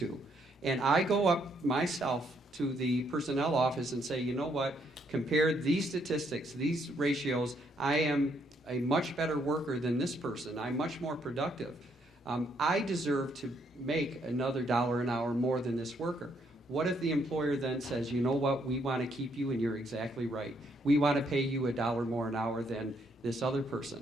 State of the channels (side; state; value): both; normal; correlation 0.72